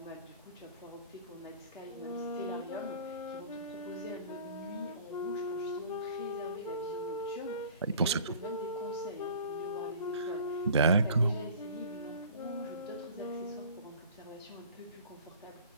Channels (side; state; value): both; inverted; correlation -0.46